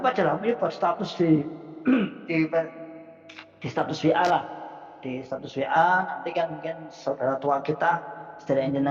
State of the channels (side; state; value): both; identical; correlation 1.00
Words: aja lah ini buat status di status WA lah, di status WA nanti kan mungkin saudara tua kita saudara